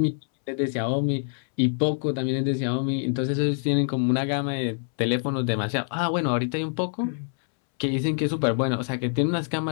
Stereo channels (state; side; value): silent; right; 61 dB below the other